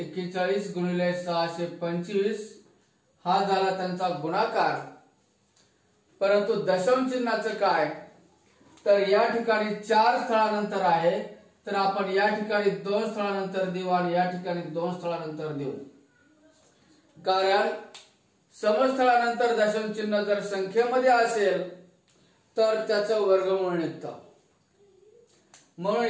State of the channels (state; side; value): identical; both; correlation 1.00